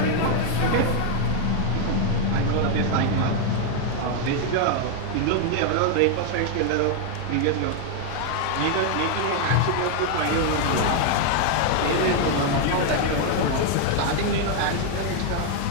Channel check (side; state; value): both; different; correlation 0.00